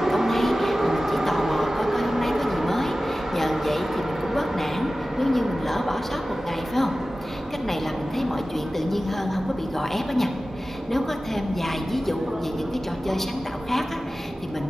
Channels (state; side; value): normal; both; correlation 0.96